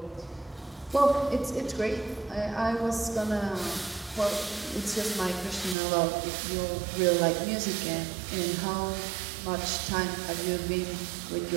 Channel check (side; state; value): left; drops out; at 5.8 s